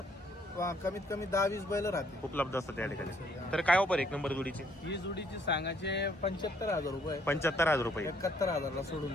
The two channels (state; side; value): normal; both; correlation 0.66